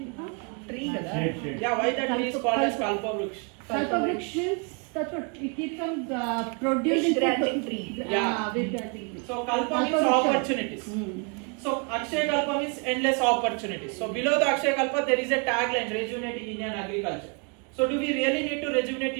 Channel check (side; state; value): left; quieter; 35.3 dB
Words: Tree. yeah. Why that tree is called as Kalpa Vruksh? Kalpa Vruksh means that's what it keeps on producing granting tree. Yeah. So Kalpa means opportunities. So Akshyakalpa means endless opportunities. So below the Akshyakalpa there is a tagline: rejuvenating Indian agriculture. So do we really need to rejuvenate